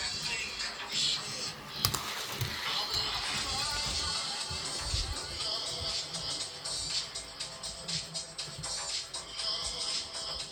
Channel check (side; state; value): both; identical; correlation 1.00